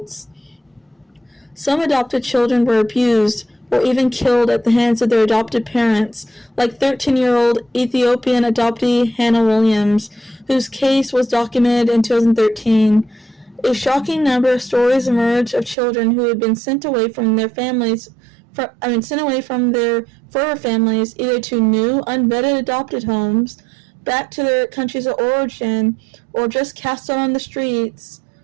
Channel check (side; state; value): left; drops out; at 15.8 s